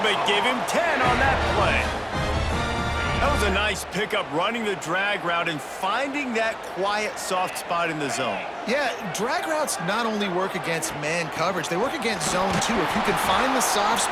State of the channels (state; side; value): identical; both; correlation 1.00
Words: but give him 10 on that play. That was a nice pickup, running the drag route and finding that quiet, soft spot in the zone. Yeah, drag routes not only work against man coverage, they work against zone too. If you can find the soft